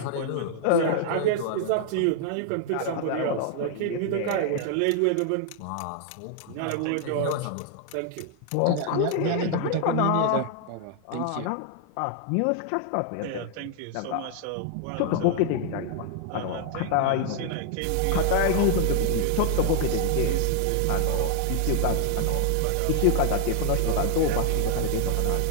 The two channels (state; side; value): different; both; correlation 0.00